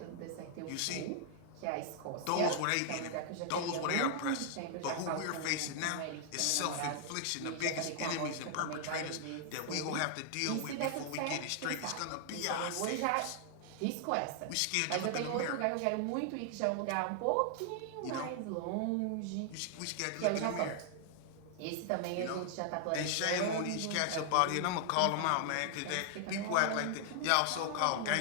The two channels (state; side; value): different; both; correlation 0.00